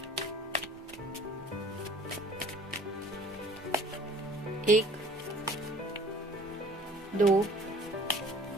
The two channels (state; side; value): normal; both; correlation 0.52